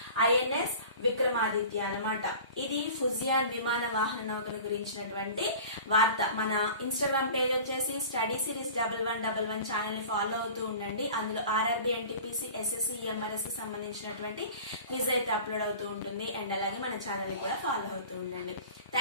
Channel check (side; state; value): both; inverted; correlation -0.41